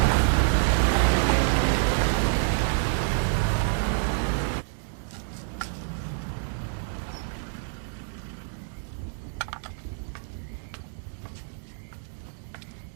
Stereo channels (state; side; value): silent; left; digital silence